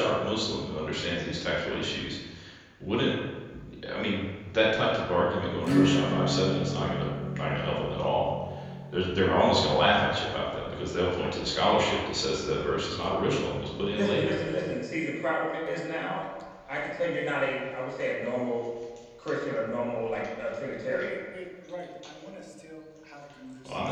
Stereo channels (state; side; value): identical; both; correlation 1.00